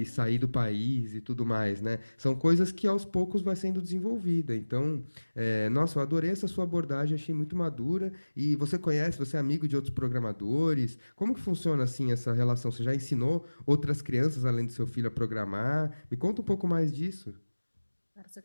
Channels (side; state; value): both; inverted; correlation -1.00